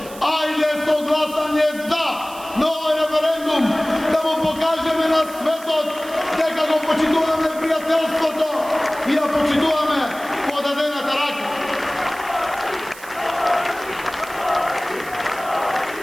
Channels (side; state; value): right; noise; hiss, 17 dB below the sound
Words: Ajde so glasanje za na ovaj referendum, da mu pokažeme na svetot, neka go počitujeme prijateljството i ja počitujeme podadената рака.